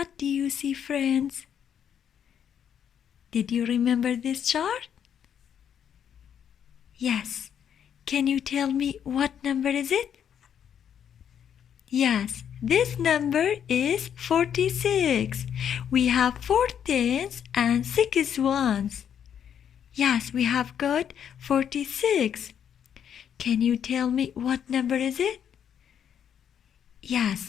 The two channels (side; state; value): right; quieter; 8.7 dB